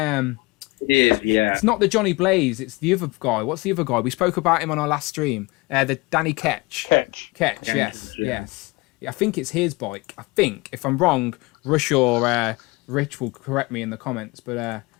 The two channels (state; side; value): quieter; right; 24.1 dB